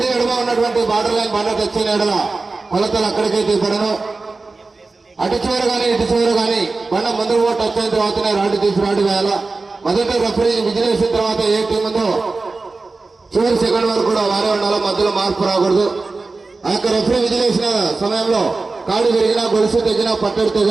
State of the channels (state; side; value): quieter; left; 3.7 dB